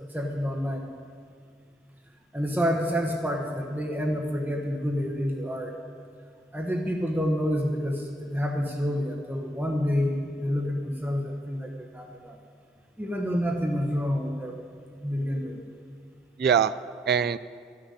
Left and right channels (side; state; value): both; normal; correlation 0.72